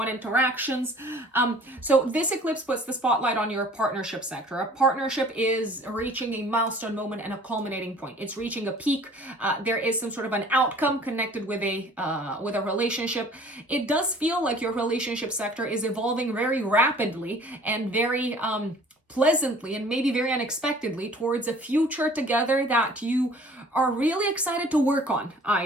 interactions. So this eclipse puts the spotlight on your partnership sector. A partnership is reaching a milestone moment and a culminating point. It's reaching a peak. There is some sort of an outcome connected with a relationship. It does feel like your relationship sector is evolving very rapidly and very pleasantly and maybe very unexpectedly towards a future together that you are really excited to work on,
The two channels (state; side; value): normal; both; correlation 0.51